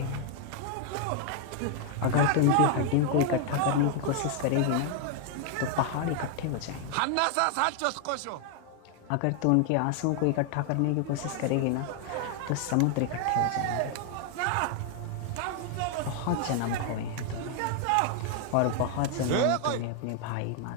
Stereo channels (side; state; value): both; different; correlation 0.00